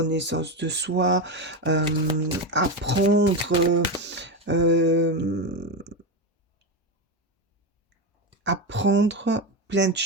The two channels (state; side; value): normal; both; correlation 0.14